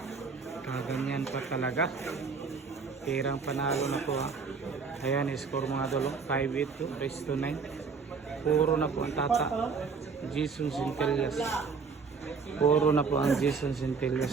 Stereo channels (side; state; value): left; quieter; 5.1 dB